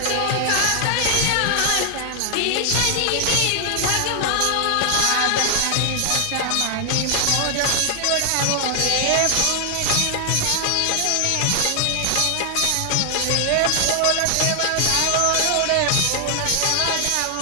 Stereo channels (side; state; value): both; different; correlation 0.00